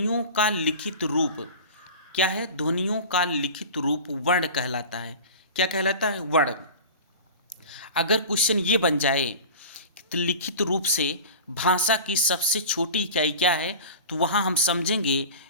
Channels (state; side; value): inverted; both; correlation -0.35